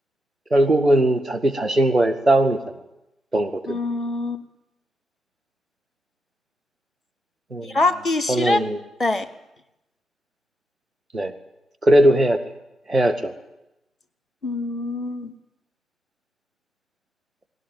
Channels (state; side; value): normal; both; correlation 0.84